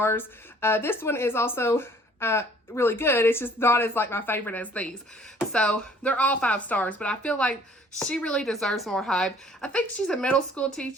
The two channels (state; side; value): normal; both; correlation 0.57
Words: This one is also really good. It's just not as like my favorite as these. So they're all 5 stars, but I feel like she really deserves more hype. I think she's a middle school